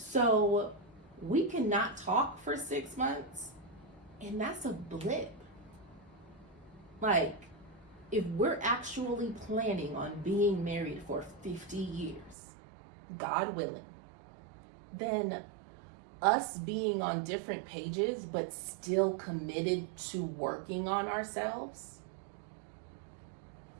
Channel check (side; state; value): left; drops out; at 12.4 s